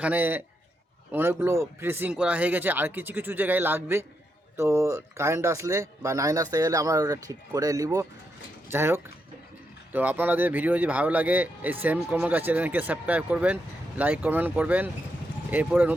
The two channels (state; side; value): normal; both; correlation 0.82